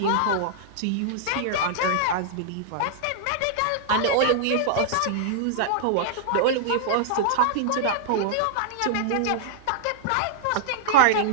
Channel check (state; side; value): different; both; correlation -0.01